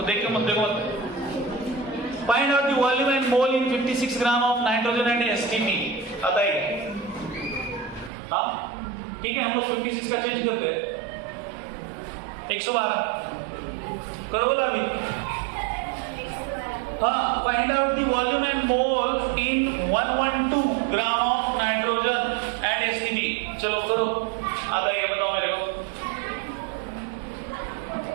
देख के मत देखो मत। Find out the volume and mole in 56 gram of nitrogen and STP, आता है। हाँ ठीक है, हम लोग 56 का चेंज करते हैं 112, करो बोला अभी। हाँ, find out the volume and mole in 112 gram of nitrogen and STP, चलो करो, आता है क्या बताओ मेरे को।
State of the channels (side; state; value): left; drops out; at 8.1 s